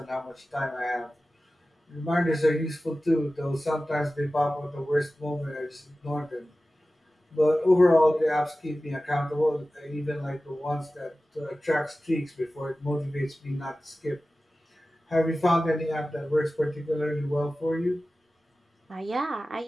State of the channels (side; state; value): both; normal; correlation 0.95